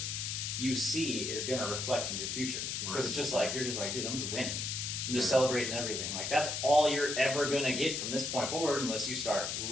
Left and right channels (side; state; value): left; noise; hiss, 2 dB below the sound